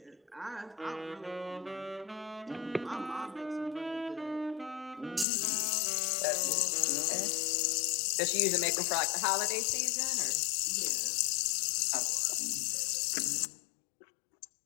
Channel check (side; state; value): right; drops out; at 5.2 s